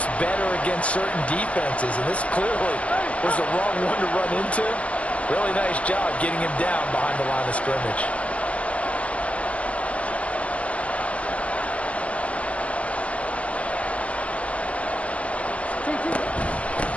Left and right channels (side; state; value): right; late; 0.064 ms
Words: better against certain defenses, and this clearly was the wrong one to run into. Really nice job getting him down behind the line of scrimmage.